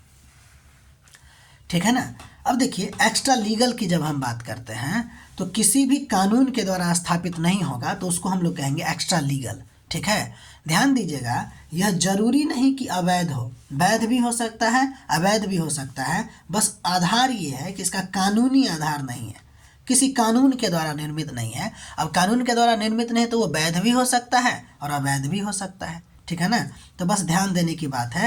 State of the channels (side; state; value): both; identical; correlation 1.00